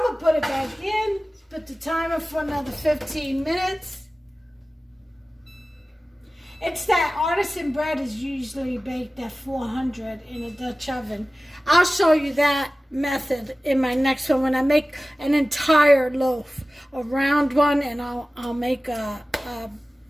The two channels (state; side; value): normal; both; correlation 0.96